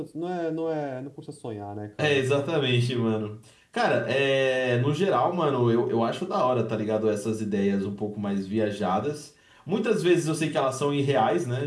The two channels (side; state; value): both; identical; correlation 1.00